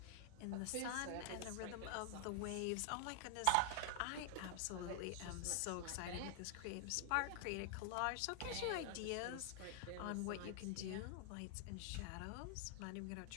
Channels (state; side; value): different; both; correlation 0.00